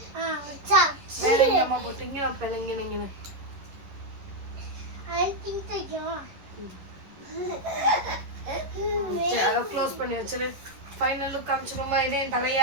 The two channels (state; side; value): late; left; 11 ms